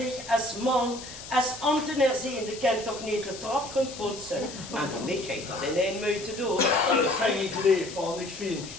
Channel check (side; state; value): left; noise; hiss, 13 dB below the sound